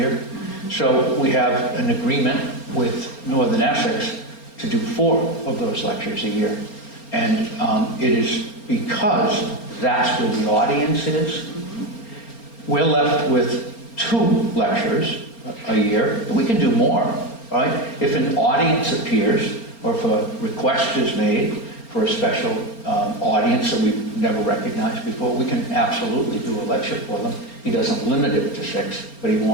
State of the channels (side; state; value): right; late; 4.3 ms